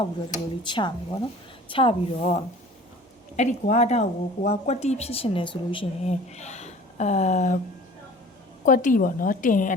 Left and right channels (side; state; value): both; normal; correlation 0.45